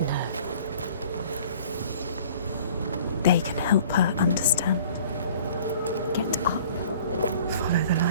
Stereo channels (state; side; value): inverted; both; correlation -0.50